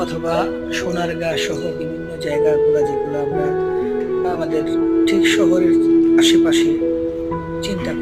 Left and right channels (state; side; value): identical; both; correlation 1.00